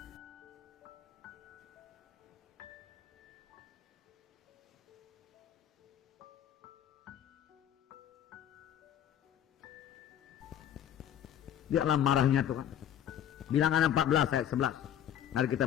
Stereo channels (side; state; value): right; quieter; 10.1 dB